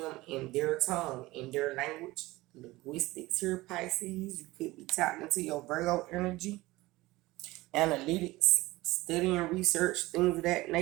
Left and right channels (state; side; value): quieter; left; 19.5 dB